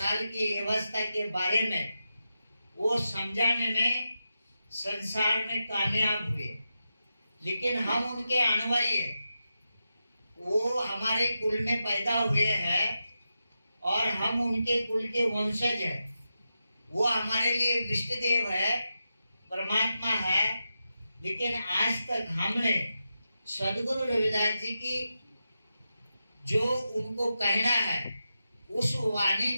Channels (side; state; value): both; inverted; correlation -0.89